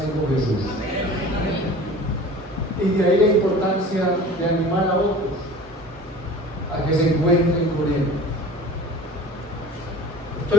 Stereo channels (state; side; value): normal; both; correlation 0.42